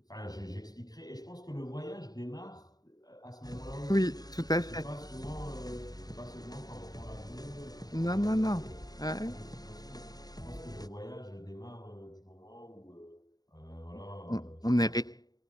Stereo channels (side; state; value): right; late; 0.19 ms